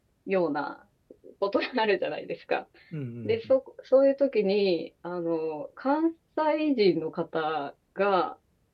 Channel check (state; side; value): identical; both; correlation 1.00